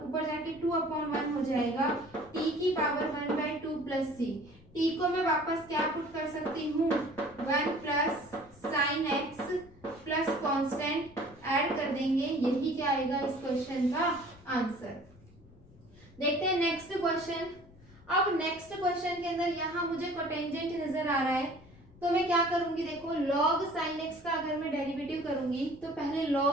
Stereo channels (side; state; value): left; noise; rumble, 24 dB below the sound